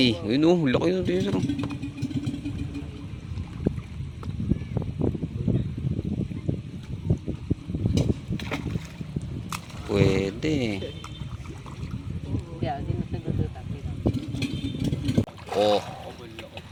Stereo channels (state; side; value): identical; both; correlation 1.00